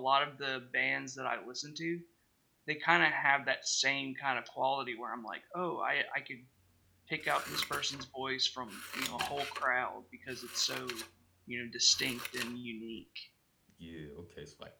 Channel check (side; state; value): both; identical; correlation 1.00